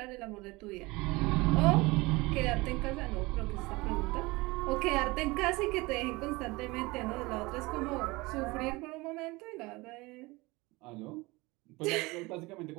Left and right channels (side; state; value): left; quieter; 22.9 dB